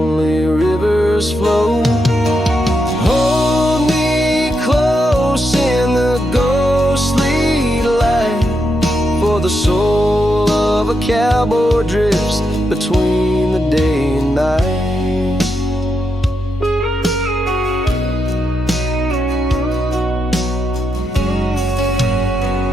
rivers flow. Hold me close in the ghostly light, for the soul of a cowboy drifts between the day and night.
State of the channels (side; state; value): both; normal; correlation 0.83